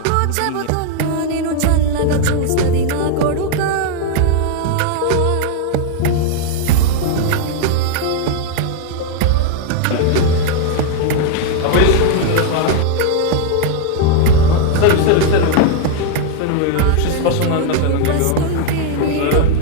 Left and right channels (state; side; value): different; both; correlation 0.00